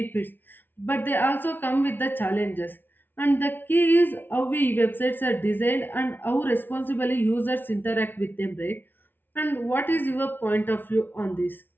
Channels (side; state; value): right; late; 0.094 ms